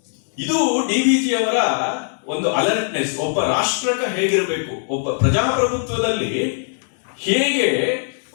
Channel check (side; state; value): right; silent; digital silence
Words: ಇದು DVG ಅವರ ಒಂದು ಅಲರ್ಟ್ನೆಸ್. ಒಬ್ಬ ರಾಷ್ಟ್ರಕ ಹೇಗಿರಬೇಕು, ಒಬ್ಬ ಪ್ರಜಾಪ್ರಭುತ್ವದಲ್ಲಿ ಹೇಗೆ